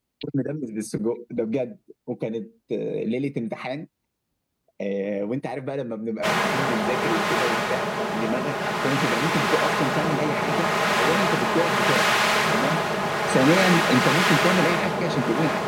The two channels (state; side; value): identical; both; correlation 1.00